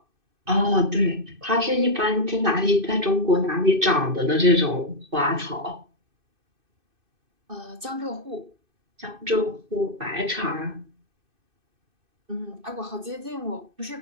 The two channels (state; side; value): late; left; 2.6 ms